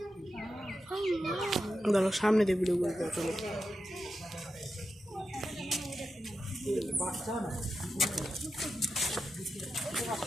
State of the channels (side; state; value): both; normal; correlation 0.89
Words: দাঁড়াও, সামনে দিয়ে ভিডিও করবো। চলো